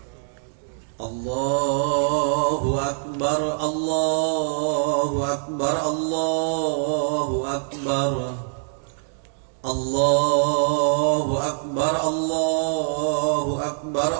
Allahu Akbar, Allahu Akbar, Allahu Akbar, Allahu Akbar, Allahu Akbar,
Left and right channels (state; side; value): silent; left; digital silence